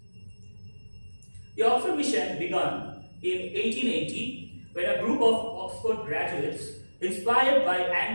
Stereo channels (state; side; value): inverted; both; correlation -1.00